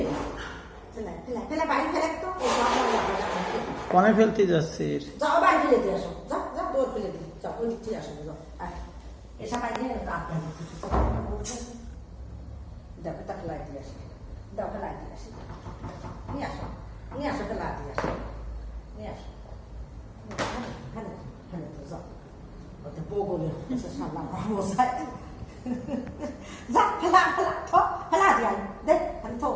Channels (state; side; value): identical; both; correlation 1.00